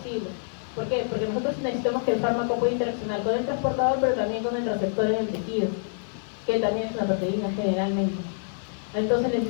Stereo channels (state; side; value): silent; right; 57 dB below the other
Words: ¿Por qué? Porque nosotros necesitamos que el fármaco pueda interaccionar con el transportador, pero también con el receptor en el tejido, que también es una proteína generalmente. Entonces